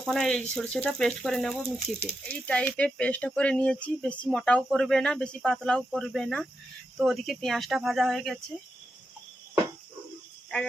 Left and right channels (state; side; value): normal; both; correlation 0.86